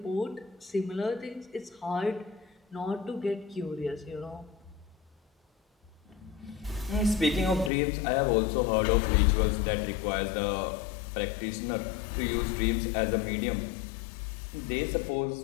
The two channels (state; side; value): drops out; right; at 7.7 s